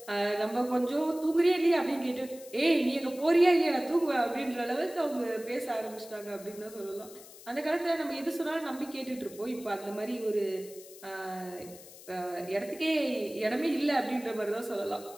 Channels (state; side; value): noise; left; hiss, 18 dB below the sound